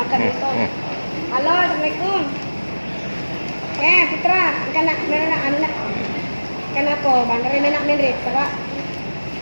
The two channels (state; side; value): inverted; both; correlation -1.00